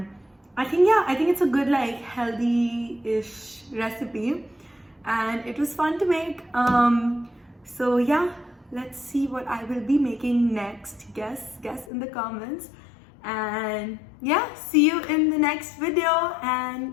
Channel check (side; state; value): right; drops out; at 11.9 s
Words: I think, yeah, I think it's a good like healthy-ish recipe. And it was fun to make. So yeah, let's see what I will be making next. Guess in the comments. And yeah, see you in the next video,